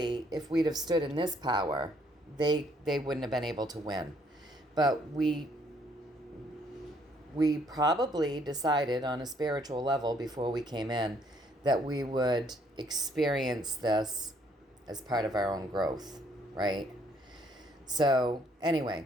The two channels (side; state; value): both; normal; correlation 0.66